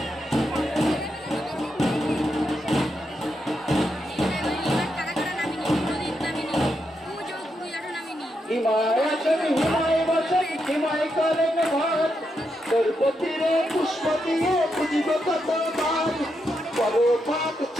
হিমায় আছেন হিমায় বসেন হিমায় করেন ভাত, তোর পতিরে পুষ্প দিয়ে খুঁজিব কত বার, বড় পাক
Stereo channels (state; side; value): normal; both; correlation 0.83